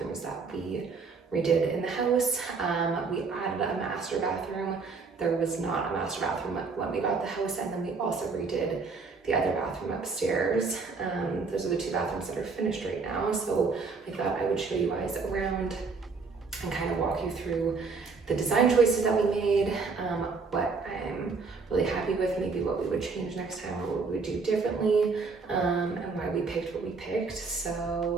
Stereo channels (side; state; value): left; quieter; 4.6 dB